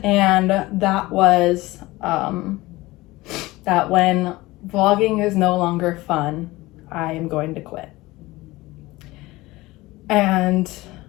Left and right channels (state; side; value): quieter; right; 19.8 dB